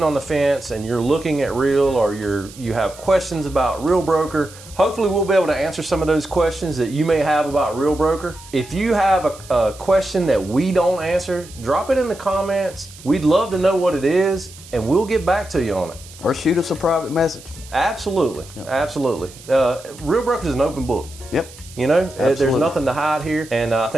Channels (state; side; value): noise; right; hiss, 19 dB below the sound